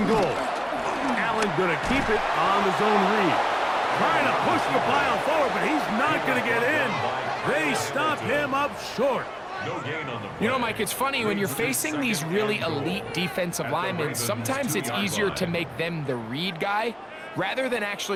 goal. Allen going to keep it on the zone read. Trying to push the pile forward, but he's not going to get in. They stop him up short. You know, Mike, it's funny, when you're facing these really elite defensive linemen, sometimes it's easier to make them the read guy rather than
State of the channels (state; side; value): identical; both; correlation 1.00